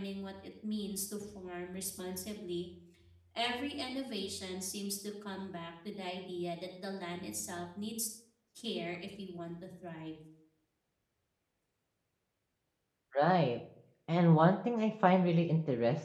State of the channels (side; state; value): both; identical; correlation 1.00